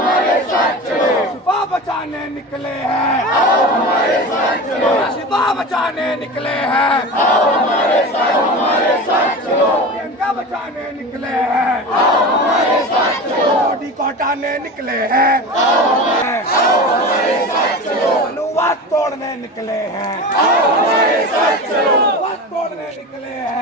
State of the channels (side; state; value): both; normal; correlation 0.29